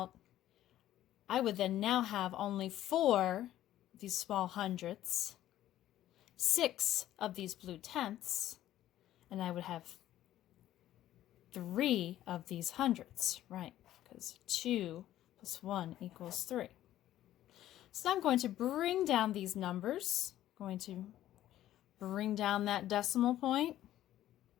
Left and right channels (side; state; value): right; quieter; 13.2 dB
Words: I would then now have only 4 of these small hundredths, 6 of these blue tenths, and I would have 3 of these hundredths, right? Because 2 plus 1 equals 3. So I'm going to bring down these numbers. I'm going to bring down that decimal point.